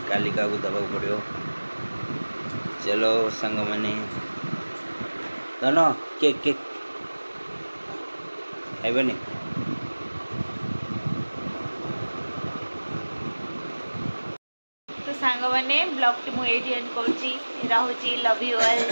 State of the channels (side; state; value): both; inverted; correlation -1.00